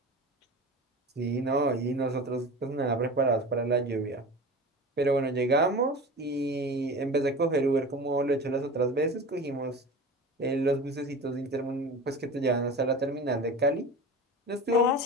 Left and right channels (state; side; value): normal; both; correlation 0.33